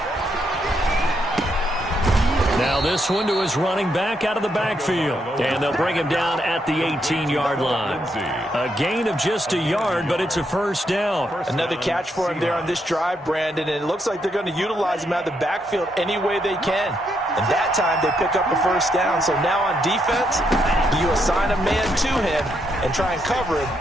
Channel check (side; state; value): both; normal; correlation 0.78